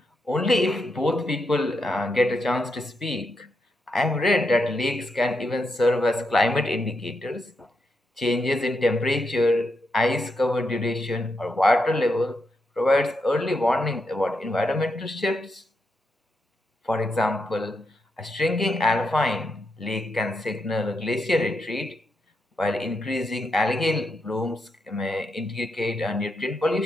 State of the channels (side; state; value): both; normal; correlation 0.82